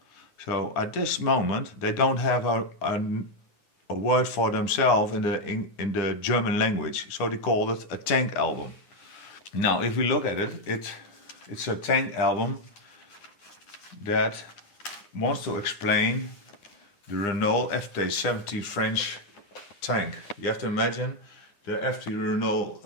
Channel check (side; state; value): right; late; 9.9 ms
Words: So at this moment, they don't have a word for themselves in the German language. So they called it a tank album. Now, if we look at it, it's a tank album that wants to explain the Renault FT-70 French tank. You have to imagine the FT Renault